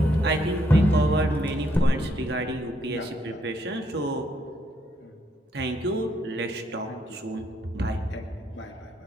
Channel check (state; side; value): normal; both; correlation 0.73